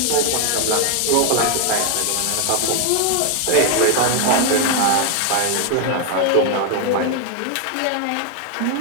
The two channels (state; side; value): different; both; correlation 0.01